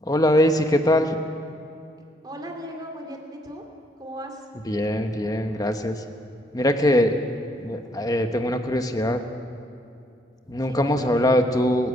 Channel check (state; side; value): normal; both; correlation 0.69